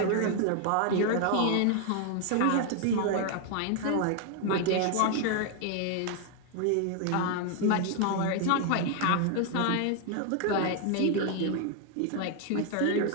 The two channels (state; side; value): different; both; correlation 0.00